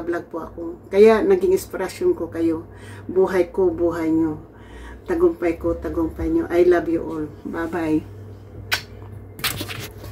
po ako. Kaya naging inspirasyon ko kayo. Buhay ko, buhay nyo. Tagumpay ko, tagumpay nyo. I love you all. Bye-bye.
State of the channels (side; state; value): both; identical; correlation 1.00